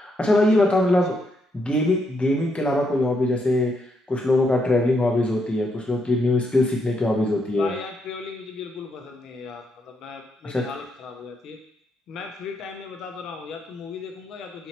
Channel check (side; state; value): both; normal; correlation 0.78